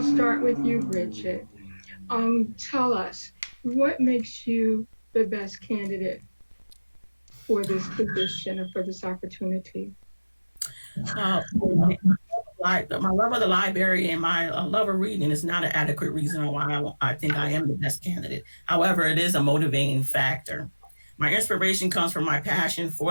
start with you, Bridget. Tell us, what makes you the best candidate for this position or for this opportunity? My love of the library and my love of reading is not an adequate reason why I think I am the best candidate. However, it is a motivating factor. My inspiration comes from my passion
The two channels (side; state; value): both; inverted; correlation -1.00